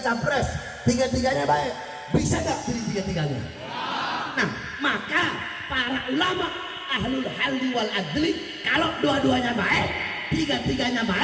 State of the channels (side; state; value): both; identical; correlation 1.00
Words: capres, tiga-tiganya baik, bisa nggak pilih tiga-tiganya? Ya. Nah, maka para ulama ahlul halli wal adli, kalau dua-duanya baik, tiga-tiganya